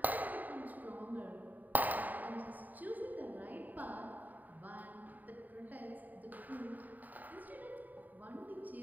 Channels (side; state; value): left; late; 0.083 ms